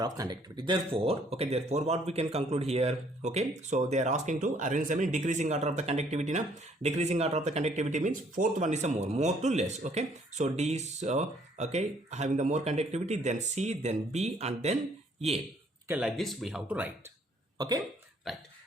of conductivity. Therefore, okay, therefore what we can conclude here, okay, so they are asking to arrange them in decreasing order of the conductivity. Now decreasing order of the conductivity means fourth one is a more to less. Okay, so D is okay, having the more conductivity, then C, then B, and then A. Okay, like this we have to write. Okay, right.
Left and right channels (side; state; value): both; normal; correlation 0.63